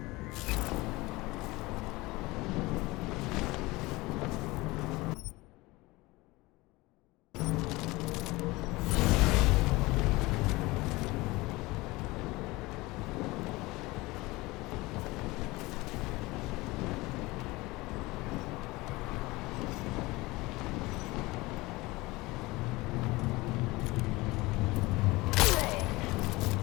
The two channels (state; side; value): quieter; right; 21.6 dB